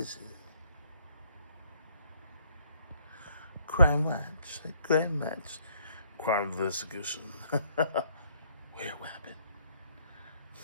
it? Crime match. Crime match. Crime investigation. Where happened?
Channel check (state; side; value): inverted; both; correlation -0.66